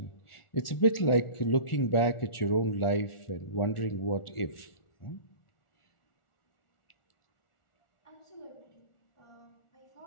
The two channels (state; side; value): late; right; 1.4 ms